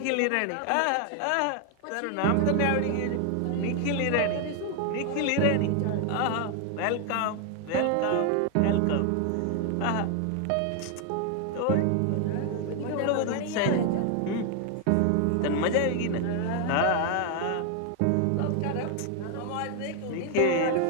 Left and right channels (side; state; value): both; different; correlation 0.00